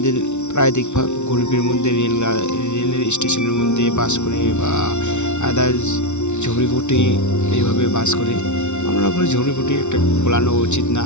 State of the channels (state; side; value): late; right; 0.82 ms